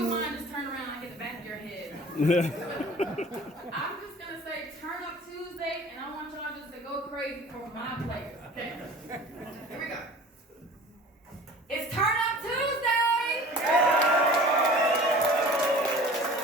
mind, just turn around and get the back of your head. I'm just gonna say turn up Tuesday, and I want y'all just to go crazy for my players. Okay? Here we go. It's Turn Up Tuesday!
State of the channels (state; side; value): normal; both; correlation 0.43